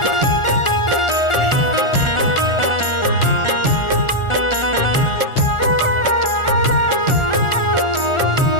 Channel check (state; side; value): late; right; 1.4 ms